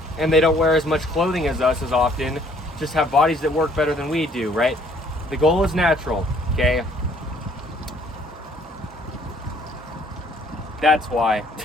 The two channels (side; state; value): both; normal; correlation 0.61